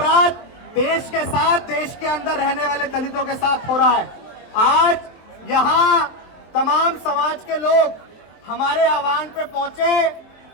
देश के साथ, देश के अंदर रहने वाले दलितों के साथ हो रहा है। आज यहाँ तमाम समाज के लोग हमारे आह्वान पे पहुंचे,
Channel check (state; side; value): late; right; 23 ms